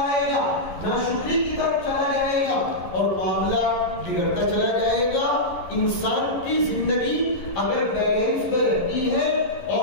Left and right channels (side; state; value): right; late; 11 ms